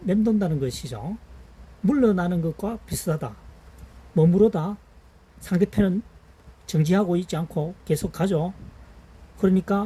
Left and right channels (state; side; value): identical; both; correlation 1.00